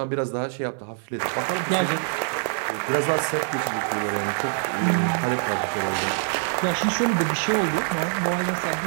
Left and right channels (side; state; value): left; silent; 62 dB below the other